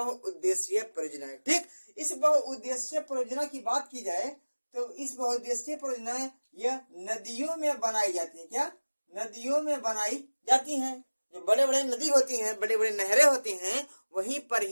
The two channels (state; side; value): inverted; both; correlation -1.00